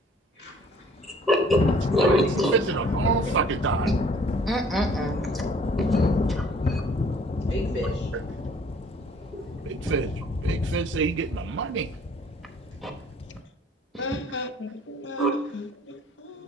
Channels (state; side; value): normal; both; correlation 0.56